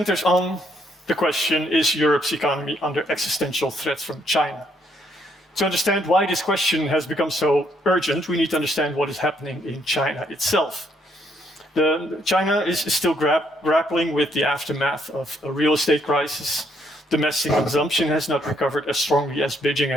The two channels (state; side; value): normal; both; correlation 0.71